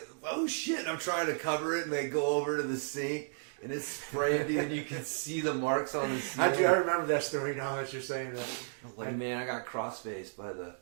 oh shit, and I'm trying to cover it, and they go over to the sink. And it's spraying, and you can see the marks on the ceiling. I remember that story now that you're saying that. Man, I got cross-faced by the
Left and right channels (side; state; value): left; silent; digital silence